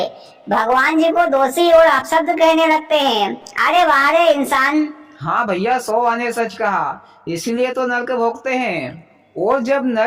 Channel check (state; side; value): identical; both; correlation 1.00